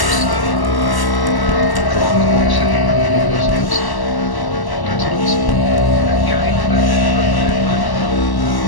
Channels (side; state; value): right; late; 1.0 ms